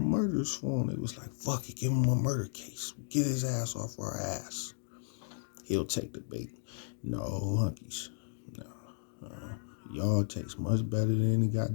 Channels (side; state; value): right; silent; digital silence